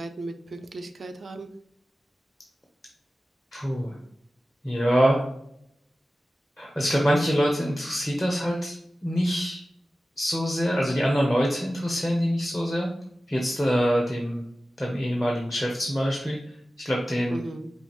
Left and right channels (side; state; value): both; normal; correlation 0.95